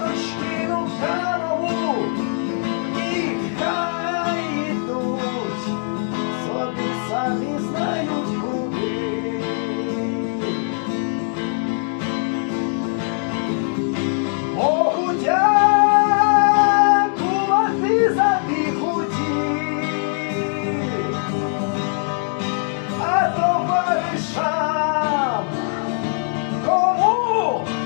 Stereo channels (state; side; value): silent; right; 58 dB below the other